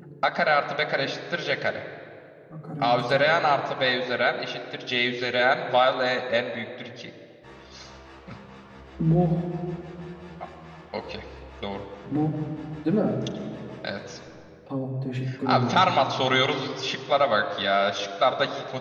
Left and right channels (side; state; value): both; identical; correlation 1.00